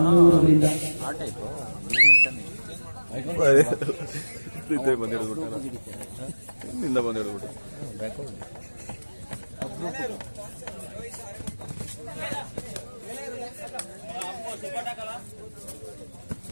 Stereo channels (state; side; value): inverted; both; correlation -1.00